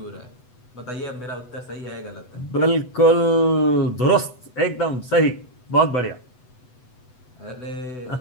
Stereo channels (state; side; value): late; right; 8.0 ms